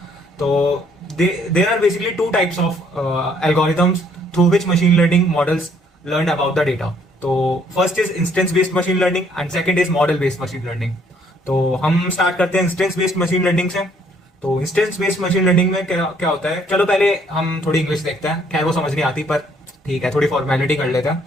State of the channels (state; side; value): normal; both; correlation 0.65